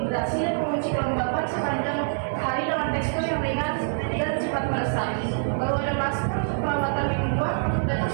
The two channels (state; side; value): silent; left; 61 dB below the other